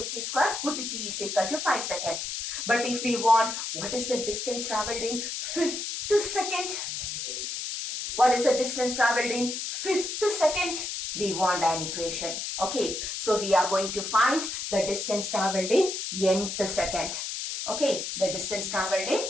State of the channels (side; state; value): left; noise; hiss, 4 dB below the sound